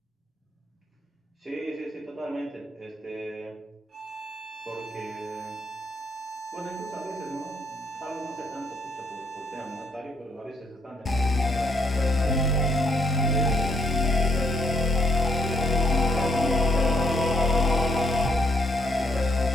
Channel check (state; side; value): normal; both; correlation 0.72